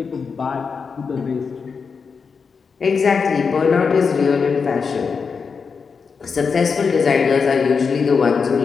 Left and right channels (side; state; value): right; quieter; 5.5 dB